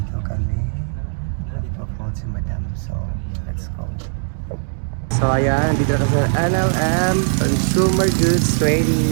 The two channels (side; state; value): left; silent; 66 dB below the other